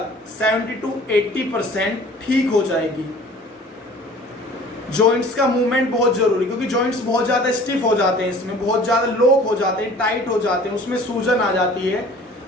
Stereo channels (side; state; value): both; normal; correlation 0.48